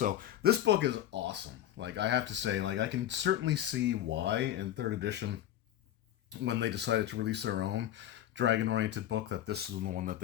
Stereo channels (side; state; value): right; quieter; 11.9 dB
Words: this book is awesome. Like I have to say, like I can certainly see why in third edition, when they decided to release their own dragon-oriented book, that this is the one that